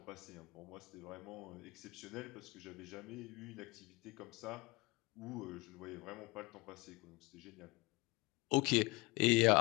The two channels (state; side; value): quieter; right; 24.3 dB